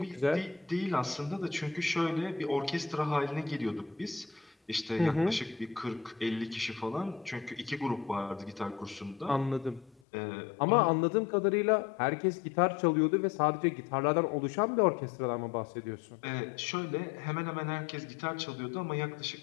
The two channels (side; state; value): right; drops out; at 10.0 s